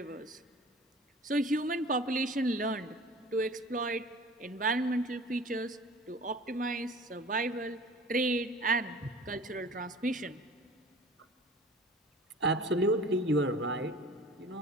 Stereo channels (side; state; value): both; normal; correlation 0.43